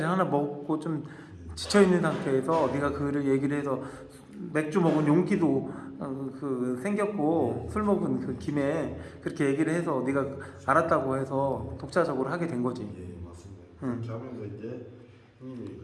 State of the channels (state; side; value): identical; both; correlation 1.00